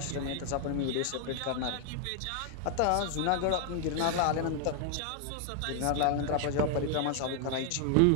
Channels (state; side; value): different; both; correlation 0.00